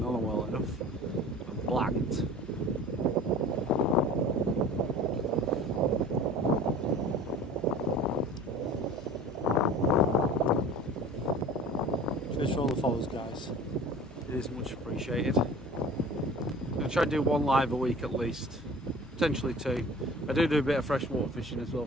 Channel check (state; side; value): normal; both; correlation 0.42